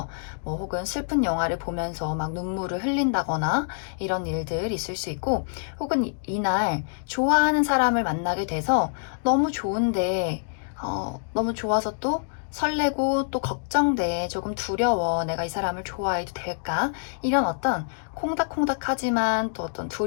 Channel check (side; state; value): right; silent; digital silence